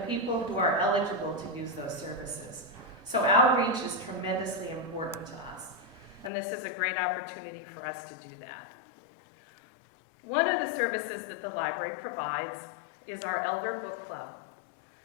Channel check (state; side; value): drops out; right; at 6.3 s